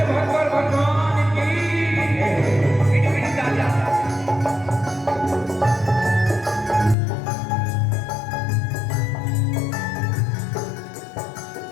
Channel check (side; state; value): right; drops out; at 7.0 s